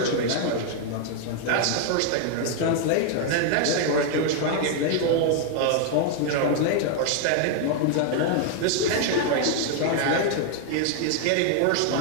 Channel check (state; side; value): different; both; correlation 0.00